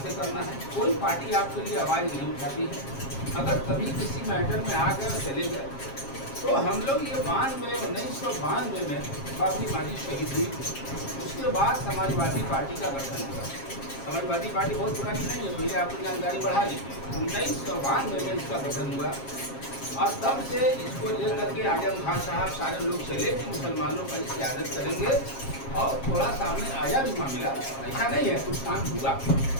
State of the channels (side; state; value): right; late; 7.4 ms